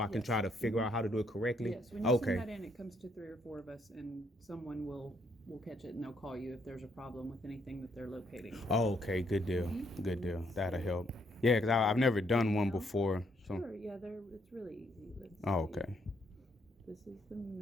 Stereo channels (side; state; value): both; normal; correlation 0.72